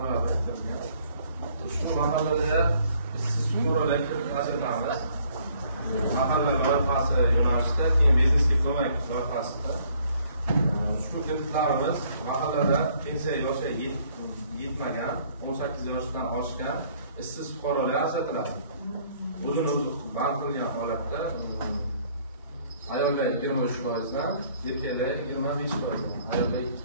biriktirilgan. Shu mahallada ishsiz fuqarolarga ajratamiz. Mahalla loyihasi yo'nalishida, keyin biznesga ko'mak loyihasida shu kreditlarimiz mahallada pensiya yoshi yetmagan, 18 yoshdan oshgan ishsiz fuqarolar ajratiladi. O'zini o'zi band qilgan holatda ayollar 23%dan, erkaklar 25%dan, ayollar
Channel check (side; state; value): both; inverted; correlation -0.62